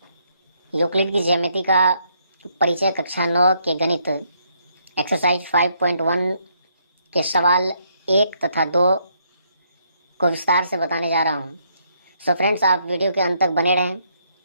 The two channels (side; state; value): both; inverted; correlation -0.72